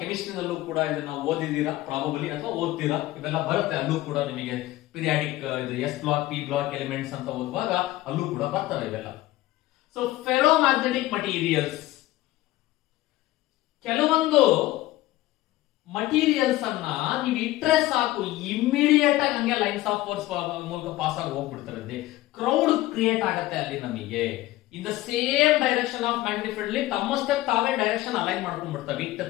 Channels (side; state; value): right; quieter; 16.8 dB